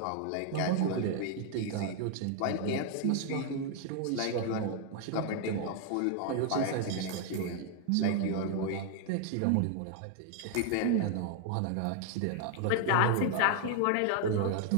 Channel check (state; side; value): different; both; correlation 0.00